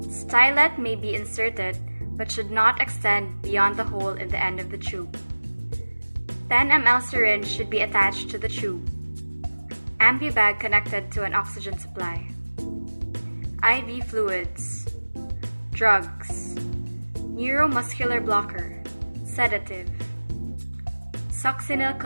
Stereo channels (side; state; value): both; inverted; correlation -1.00